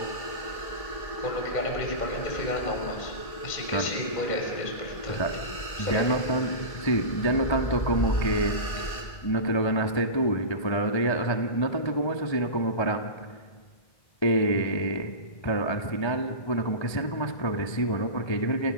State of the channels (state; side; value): late; right; 1.6 ms